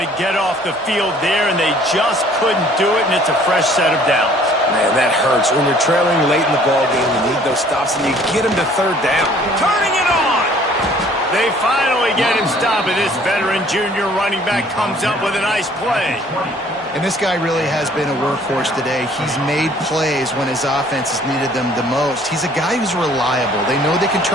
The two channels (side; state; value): both; normal; correlation 0.56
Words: get off the field there, and they just couldn't do it, and it's a fresh set of downs. Man, that hurts. When you're trailing late in the ball game, you need those stops, and you get them to third down. Turning it on! They finally get him stopped, and this veteran junior running back comes up with a nice play. And this guy really has been a workhorse today. He's made plays when his offense has needed them the most. He's a guy who's reliable. They know they can